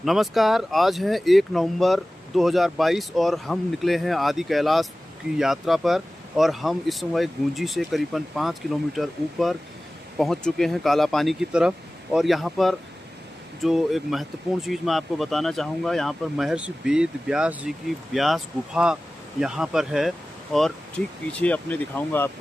नमस्कार। आज है 1 नवंबर 2022 और हम निकले हैं आदि कैलाश की यात्रा पर। और हम इस समय गूंजी से करीबन 5 किलोमीटर ऊपर पहुंच चुके हैं काला पानी की तरफ। और यहां पर जो एक महत्वपूर्ण चीज़ मैं आपको बताना चाहूँगा, यहाँ पर महर्षि वेद व्यास जी की व्यास गुफा यहाँ पर है। और ठीक पीछे अपने दिखाऊंगा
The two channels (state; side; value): normal; both; correlation 0.97